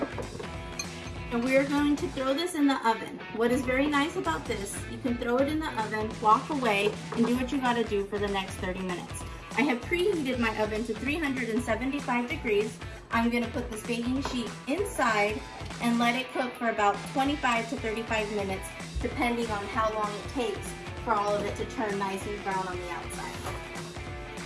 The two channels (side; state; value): both; identical; correlation 1.00